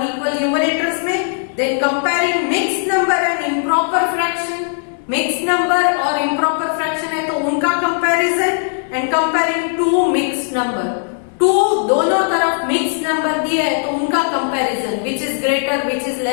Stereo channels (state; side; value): silent; right; 68 dB below the other